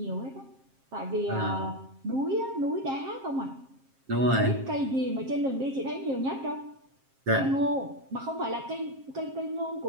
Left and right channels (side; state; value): left; late; 7.5 ms